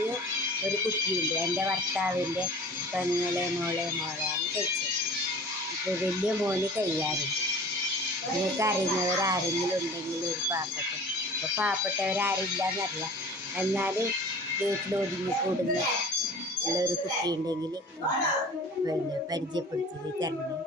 ഒരു കുട്ടിയുണ്ട്. എൻ്റെ ഭർത്താവിൻ്റെ മോളെയാണ് കഴിച്ചത്. ഇപ്പോൾ വലിയ മോന് കഴിയാറുണ്ട്. നിങ്ങൾക്ക് അറിയുന്നവരാരെങ്കിലും ഉണ്ടെങ്കിൽ ഒരു ഇപ്പോൾ പാവപ്പെട്ടവരാരില്ലെന്നറിയാം. എന്നാലും വീട്ടിലൊതുങ്ങി കൂടുന്ന ഉള്ളൊരു കുട്ടി ഉണ്ടെങ്കിൽ പിന്നെ പരിചയപ്പെടുത്തി തരണം.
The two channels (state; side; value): normal; both; correlation 0.42